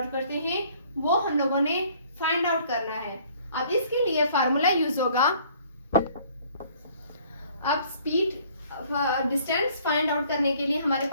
करते हैं वो हम लोगों ने फाइंड आउट करना है। अब इसके लिए फार्मूला यूज होगा। अब डिस्टेंस फाइंड आउट करने के लिए हमारे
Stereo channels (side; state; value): both; inverted; correlation -0.57